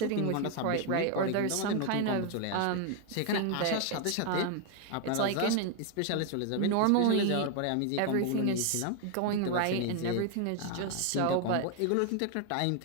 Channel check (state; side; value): different; both; correlation 0.01